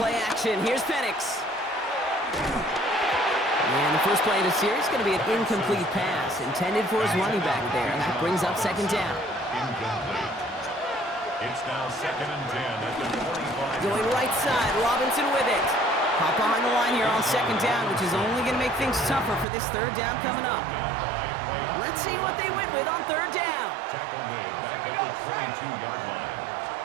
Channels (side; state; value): left; drops out; at 19.5 s